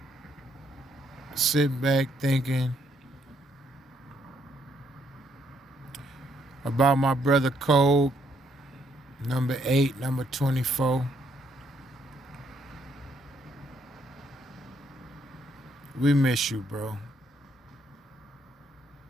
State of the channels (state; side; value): normal; both; correlation 0.72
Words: sitting back thinking about my brother Cole, number 8, number 24. We miss you, bro.